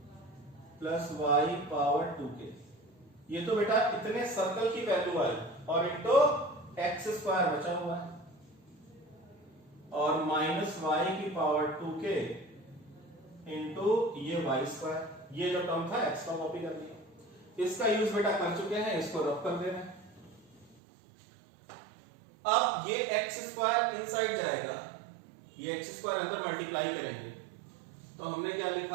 plus y power 2k। ये तो बेटा इतने सर्कल की वैल्यू आई और इंटू एक्स स्क्वायर बचा हुआ है, और माइनस वाई की पावर 2k इंटू ये वाई स्क्वायर। ये जो टर्म था एक्स का कॉपी कर दिया, इसका यूज बेटा कर चुके हैं, इसको रब कर दे रहे हैं। अब ये एक्स स्क्वायर इनसाइड जाएगा, ये एक्स स्क्वायर अंदर मल्टीप्लाई करेंगे, तो हमने क्या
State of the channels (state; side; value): drops out; left; at 20.8 s